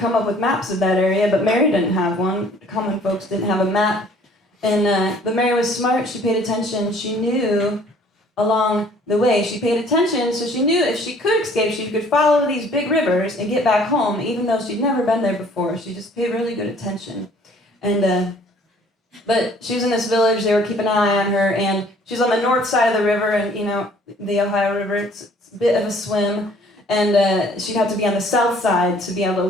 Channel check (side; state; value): both; normal; correlation 0.56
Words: come up with maps of that area, but Mary didn't have one. Common folks didn't have a map. And but Mary was smart. She paid attention. She knew along the way. She paid attention, so she knew if she could escape, she could follow these big rivers and get back home, even though she'd never been there before. She just paid really good attention. And but she was in this village. They were keeping an eye on her, and she's on the north side of the river, and the Ohio River. It's a bit of a swim, and she'd have to be on the south side to be